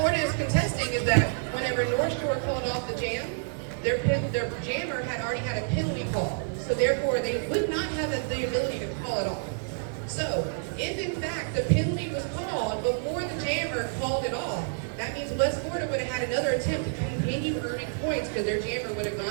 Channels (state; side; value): silent; left; digital silence